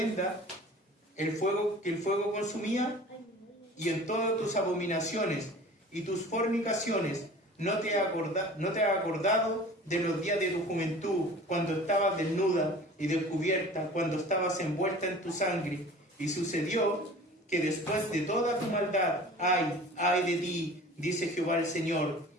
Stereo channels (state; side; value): normal; both; correlation 0.42